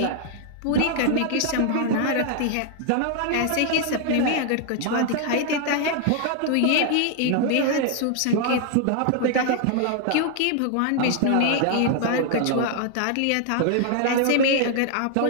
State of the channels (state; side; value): different; both; correlation 0.00